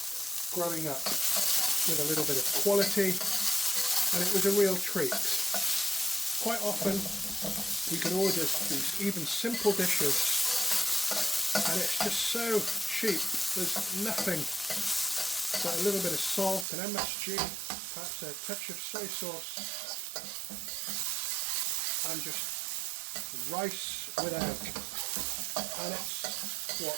growing up, with a little bit of quality, and it was a real treat. Quite often you can order these even simple dishes and it's just so cheap. There's nothing but a little bit of salt and MSG, perhaps a touch of soy sauce, and just rice with egg. And it's what,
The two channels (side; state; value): left; drops out; at 16.7 s